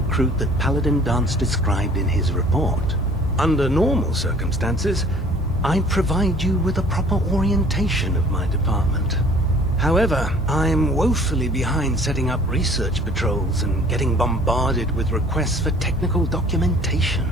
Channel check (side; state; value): both; normal; correlation 0.52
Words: that Paladin Dance described in his report. Under normal circumstances, I'd provide you with a proper orientation of my department. However, I'm woefully behind setting up research patrols and getting bombarded with requests for technical documentation.